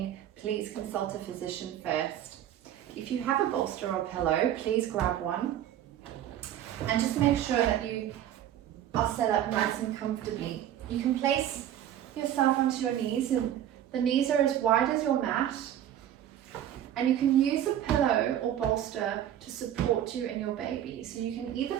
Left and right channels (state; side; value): quieter; left; 11.2 dB